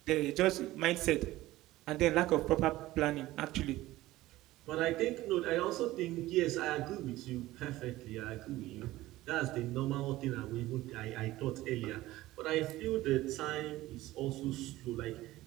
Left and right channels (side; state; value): left; quieter; 16.9 dB